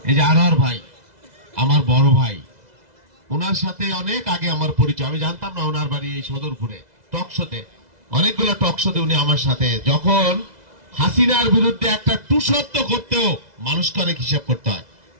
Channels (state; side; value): late; left; 2.0 ms